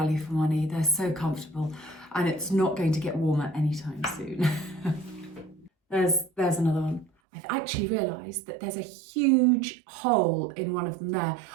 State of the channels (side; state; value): left; drops out; at 7.1 s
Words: for money. They're so comfortable and it's not going to get warmer anytime soon. There's another one. I've actually realised that there's a huge hole in one of them there.